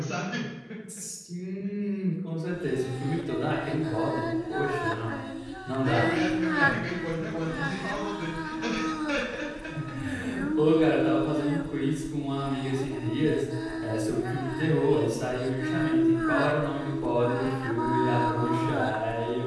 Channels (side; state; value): both; identical; correlation 1.00